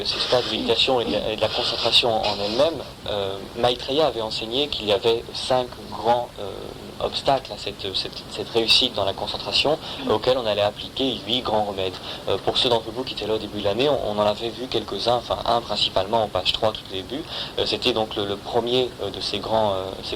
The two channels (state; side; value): identical; both; correlation 1.00